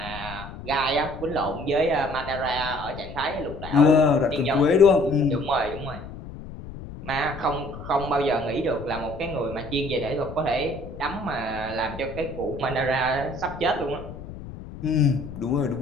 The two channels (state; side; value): noise; left; rumble, 12 dB below the sound